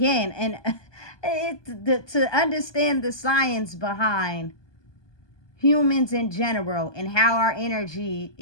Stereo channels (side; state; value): right; late; 1.2 ms